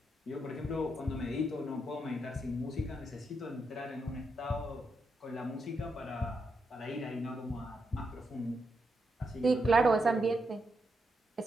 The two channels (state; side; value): normal; both; correlation 0.82